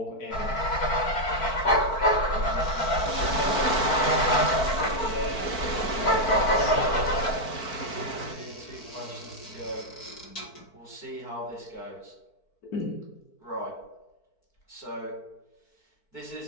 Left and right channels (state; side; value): late; right; 4.5 ms